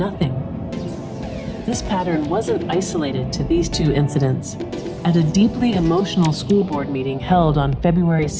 This pattern wasn't isolated to these 2 incidents. At a deeply emotional school board meeting held on February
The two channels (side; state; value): both; identical; correlation 1.00